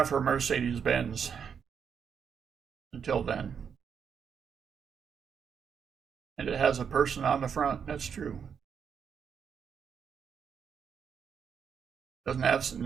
her Mercedes Benz. Until then. And it has a person on the front. That's true. Doesn't have,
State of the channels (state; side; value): quieter; left; 7.1 dB